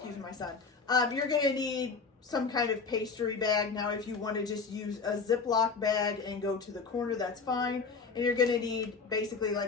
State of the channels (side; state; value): right; quieter; 4.8 dB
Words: my son. You're going to need some kind of pastry bag. Now, if you want to just use a Ziploc bag and go to the corner, that's fine. And you're going to need basically